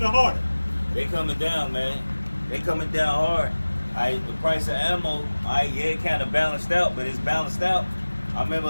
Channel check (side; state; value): both; inverted; correlation -1.00